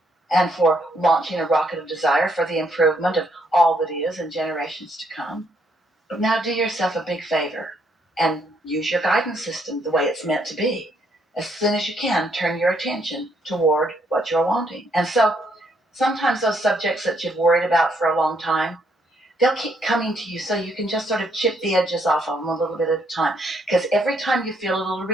and for launching a rocket of desire for the improvement of all that is in generations to come. But now do yourself a big favor and use your guidance system the way it's meant to be. As soon as you can, turn your attention toward what you're wanting. And so sometimes those subjects that you've worried about for a long time, they'll keep coming to you so you can just sort of chip the edges off of them a little bit at a time. Because every time you feel a little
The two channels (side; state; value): both; normal; correlation 0.72